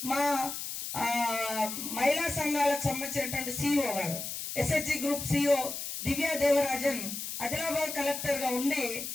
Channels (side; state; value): left; noise; hiss, 6 dB below the sound